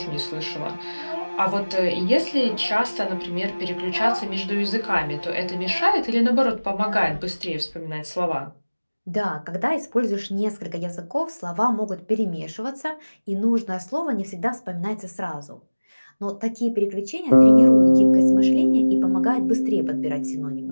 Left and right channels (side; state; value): both; inverted; correlation -1.00